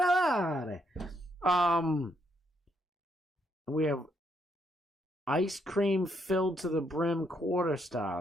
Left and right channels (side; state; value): both; normal; correlation 0.75